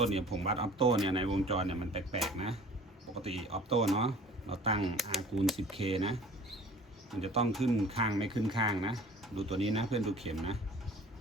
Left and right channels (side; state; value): both; normal; correlation 0.47